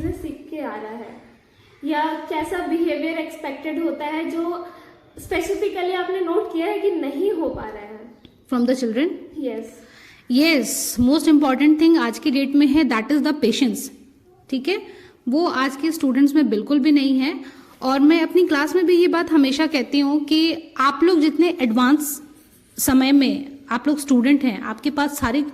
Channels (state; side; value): identical; both; correlation 1.00